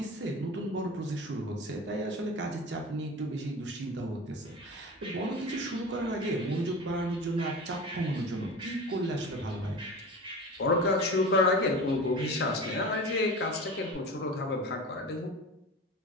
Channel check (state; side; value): normal; both; correlation 0.33